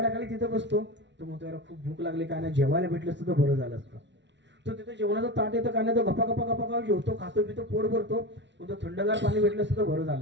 तिथं बसतो. तो म्हणतो याला खूप भूक लागली, काय नाही, जेवायला भेटलं असतं तर बरं झालं असतं. तो तिथं जेवणाचं ताट येतं, काय नाही, तो गप्पा गप्पा गप्पा जेवतो, खातो पितो, पोट भरतो. तो थंडगार पाणी भेटलं असतं तर बरं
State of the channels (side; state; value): left; late; 0.52 ms